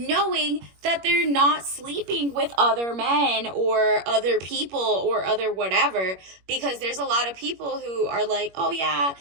that they're not sleeping with other men or other people or other whatever, because there's a lot of people who are like, oh yeah,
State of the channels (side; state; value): left; late; 21 ms